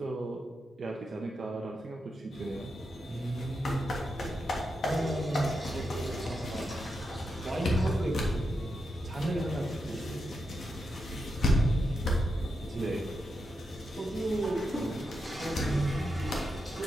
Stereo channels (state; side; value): normal; both; correlation 0.86